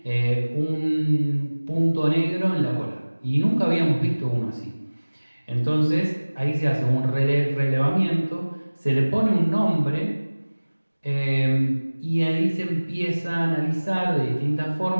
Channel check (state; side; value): inverted; both; correlation -1.00